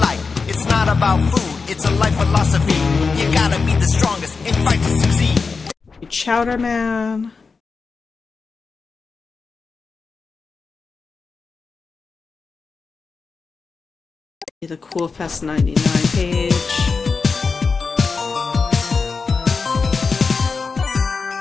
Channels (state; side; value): quieter; right; 4.7 dB